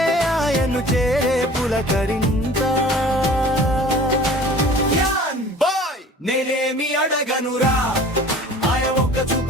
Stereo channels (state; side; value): normal; both; correlation 0.46